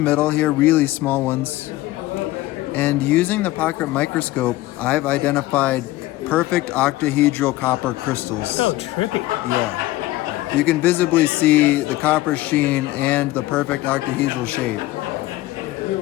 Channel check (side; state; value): right; quieter; 17.4 dB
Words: here, really small ones. And using the pocket microscope, I've identified perfect octahedral copper crystals. Oh, trippy. Yeah. You can visibly see the copper sheen and the perfect octahedral shape.